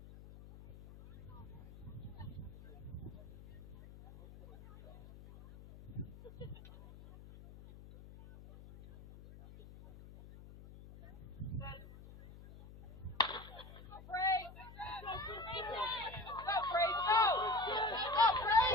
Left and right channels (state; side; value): noise; left; hum, 17 dB below the sound